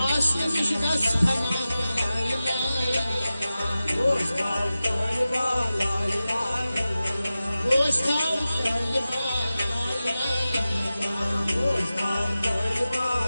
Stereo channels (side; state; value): both; inverted; correlation -0.95